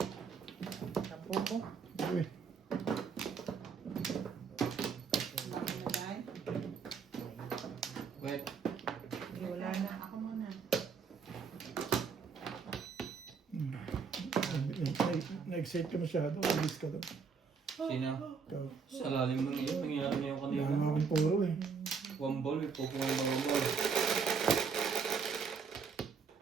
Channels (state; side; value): quieter; left; 5.7 dB